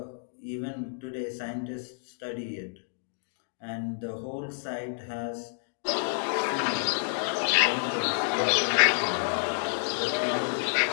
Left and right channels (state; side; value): silent; right; digital silence